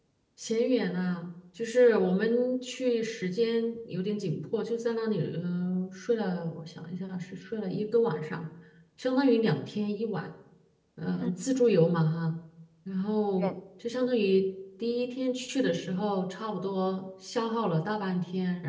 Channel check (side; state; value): both; identical; correlation 1.00